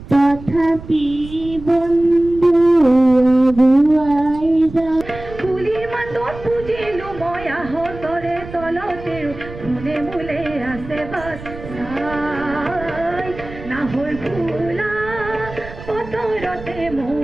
তথাপি বন্ধু ফুলিৰ মাতত বুজিলো মই আহতৰে তলতে ফুলে মূলে আছে বাস নাহৰ ফুলা বতৰতে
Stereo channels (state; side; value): noise; right; rumble, 14 dB below the sound